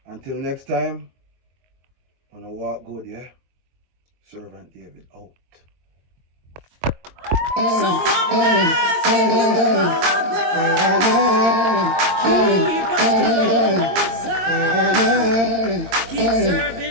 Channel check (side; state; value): left; late; 22 ms